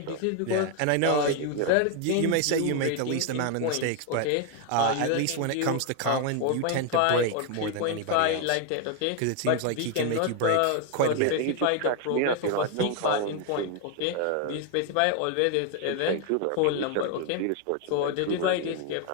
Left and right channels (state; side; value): different; both; correlation 0.01